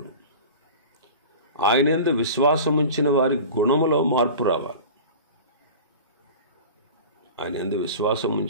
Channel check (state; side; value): inverted; both; correlation -0.36